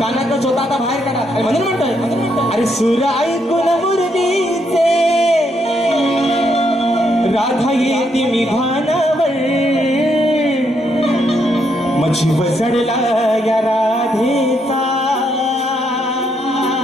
चोता आता बाहेर काढा म्हणून म्हणतोय अरे सूर ऐकून मुरलीचे राधा येते मी भानावर मग जीव चढला या राधेचा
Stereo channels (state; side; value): normal; both; correlation 0.76